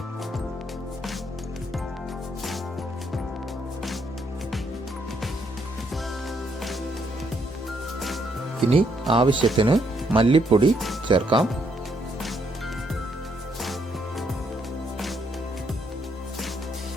ഇനി ആവശ്യത്തിന് മല്ലിപ്പൊടി ചേർക്കാം.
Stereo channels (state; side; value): normal; both; correlation 0.73